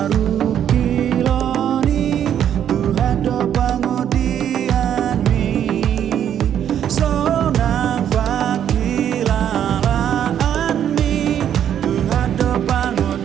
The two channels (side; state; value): left; quieter; 9.7 dB